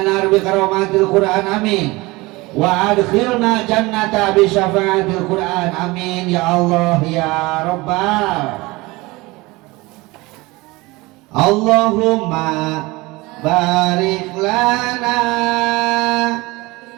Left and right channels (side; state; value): left; quieter; 22.3 dB